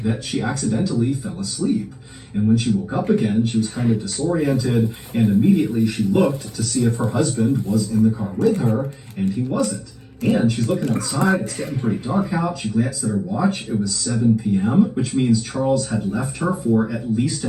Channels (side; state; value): both; identical; correlation 1.00